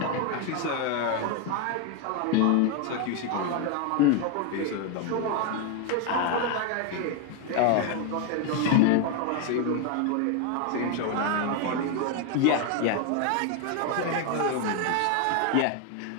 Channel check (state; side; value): different; both; correlation 0.01